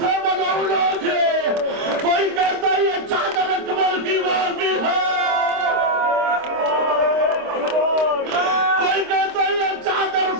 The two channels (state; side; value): late; left; 26 ms